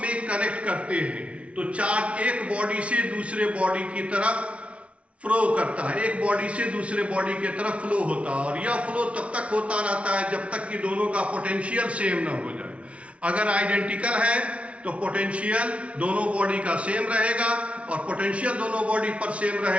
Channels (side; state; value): left; late; 0.062 ms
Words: कनेक्ट करते हैं तो चार्ज एक बॉडी से दूसरे बॉडी की तरफ फ्लो करता है, एक बॉडी से दूसरे बॉडी की तरफ फ्लो होता है, और यह फ्लो तब तक होता रहता है जब तक कि दोनों का पोटेंशियल सेम ना हो जाए। अगर आइडेंटिकल है तो पोटेंशियल दोनों बॉडी का सेम रहेगा, और पोटेंशियल दोनों बॉडी पर सेम